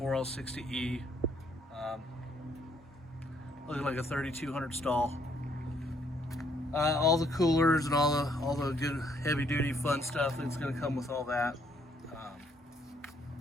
Looking like a 3200 stall. All the coolers and all the good heavy duty fun stuff that's going to come with all that.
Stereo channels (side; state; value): both; normal; correlation 0.68